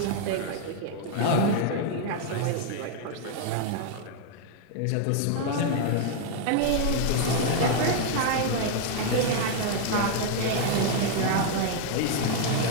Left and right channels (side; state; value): both; different; correlation 0.00